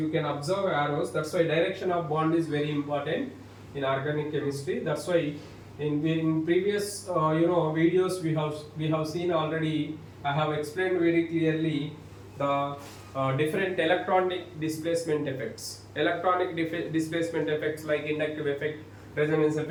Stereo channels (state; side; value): identical; both; correlation 1.00